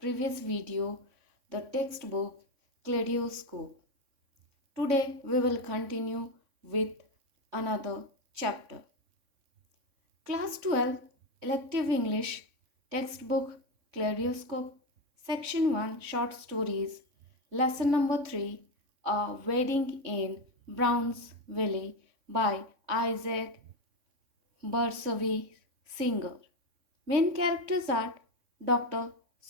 video, the textbook Kaleidoscope. Today, we will continue with another chapter. Class 12 Elective English Textbook Kaleidoscope Section 1 Short Stories Lesson number 3 A Wedding in Brownsville by Isaac Barsavi Singer. Main characters are Dr.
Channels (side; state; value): left; late; 3.6 ms